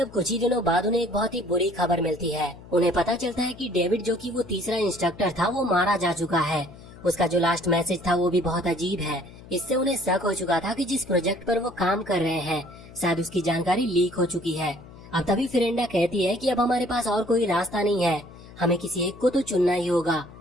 कुछ ही दिनों बाद उन्हें एक बहुत ही बुरी खबर मिलती है। उन्हें पता चलता है कि डेविड, जो कि वो तीसरा इंस्ट्रक्टर था, वो मारा जा चुका है। उसका जो लास्ट मैसेज था वो भी बहुत अजीब है। इससे उन्हें शक हो चुका था कि जिस प्रोजेक्ट पर वो काम कर रहे हैं, शायद उसकी जानकारी लीक हो चुकी है। अब तभी फेरेंडा कहती है कि अब हमारे पास और कोई रास्ता नहीं है, हमें किसी एक को तो चुनना ही होगा,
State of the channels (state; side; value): noise; left; hum, 19 dB below the sound